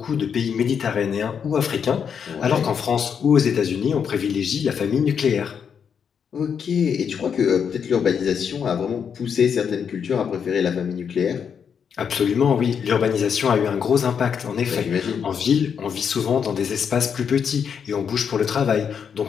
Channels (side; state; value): right; quieter; 7.2 dB